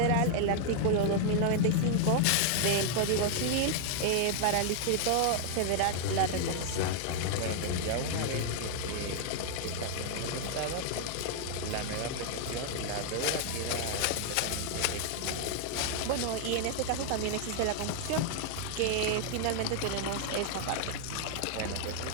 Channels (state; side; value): different; both; correlation 0.00